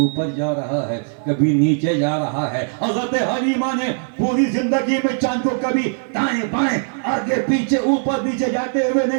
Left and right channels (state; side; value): silent; left; digital silence